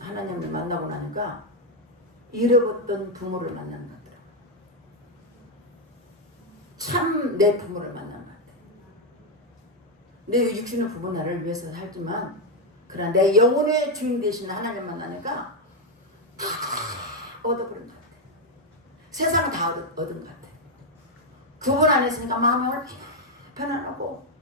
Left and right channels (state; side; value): normal; both; correlation 0.02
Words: 하나님을 만나고 나니까 잃어버렸던 부모를 만나는 것 같더라고요. 참 내 부모를 만나는 것 같아요. 내 육신의 부모 나를 위해서 살지만 그러나 내 영혼의 주인 되신 하나님 만나니까 다 얻어버린 것 같아요. 세상은 다 얻은 것 같아요. 그분 안에 있으니까 마음이 얼마나 편안하고